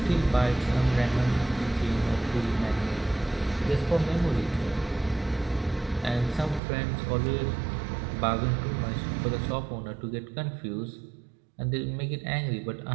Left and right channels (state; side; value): drops out; left; at 6.6 s